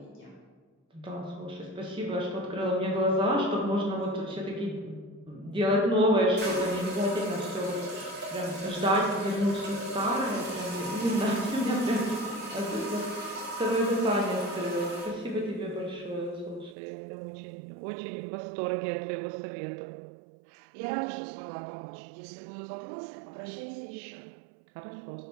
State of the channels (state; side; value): drops out; left; at 16.8 s